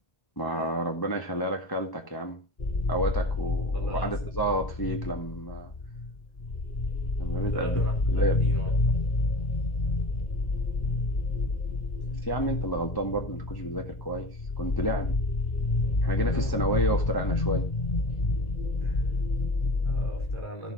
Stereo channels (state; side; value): late; right; 1.1 ms